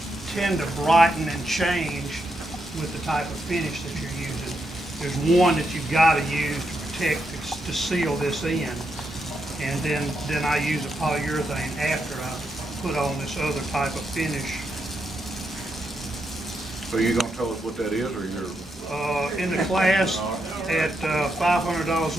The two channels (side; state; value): both; normal; correlation 0.82